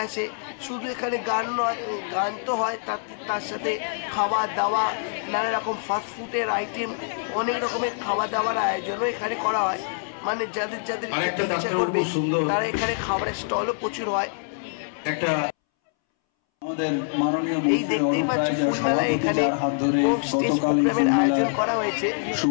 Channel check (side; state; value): right; silent; 62 dB below the other